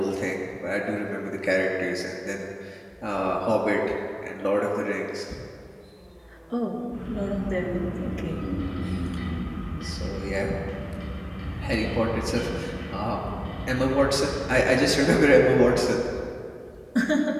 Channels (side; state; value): both; identical; correlation 1.00